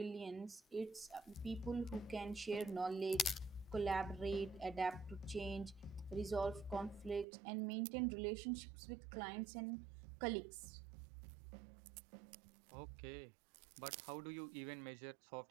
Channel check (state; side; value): drops out; left; at 7.2 s